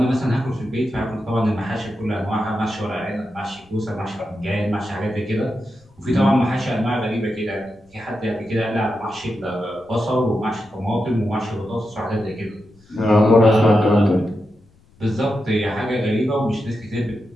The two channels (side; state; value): left; noise; rumble, 30 dB below the sound